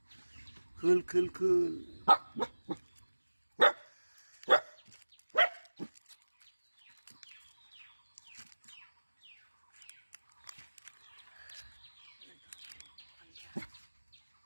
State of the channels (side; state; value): both; inverted; correlation -1.00